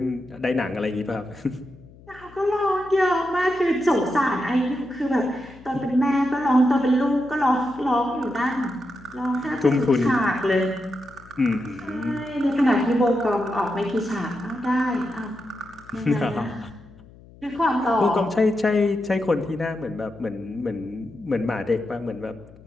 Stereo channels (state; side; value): noise; left; hum, 23 dB below the sound